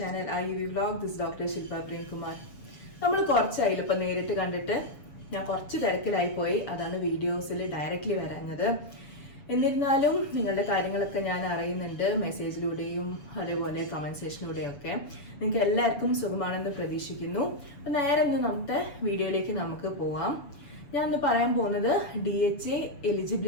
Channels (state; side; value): late; right; 7.0 ms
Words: IUV vlog. This is Dr. Shilpa Prem Kumar. നമ്മൾ കുറച്ചായില്ല ഇപ്പം നേരിട്ട് കണ്ടിട്ട് ഞാൻ കുറച്ച് തിരക്കിലായി പോയി. അതാണ് വീഡിയോസിൽ ഡയറക്റ്റ്ലി വരാഞ്ഞത്. എന്നിരുന്നാലും നിങ്ങളുടെ കാര്യങ്ങളൊക്കെ ഞാൻ അറിയുന്നുണ്ട്, മെസ്സേജിലൂടെയും അതേപോലെ കമൻറ്റ് സെക്ഷനിലൂടെയൊക്കെ. നിങ്ങൾക്ക് എല്ലാവർക്കും സുഖമാണെന്ന് പ്രതീക്ഷിക്കുന്നു. അപ്പം നേരെ ഇന്ന് നമ്മുടെ വീഡിയോയിലേക്ക് നമുക്ക് പോവാം. ഞാൻ ഇന്ന് പറയാൻ പോകുന്നത് DHA